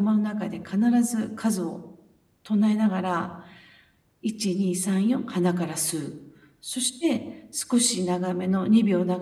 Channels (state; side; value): identical; both; correlation 1.00